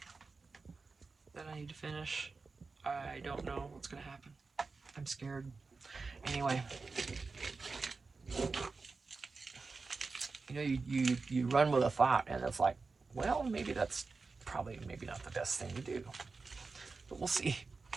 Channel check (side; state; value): left; quieter; 4.2 dB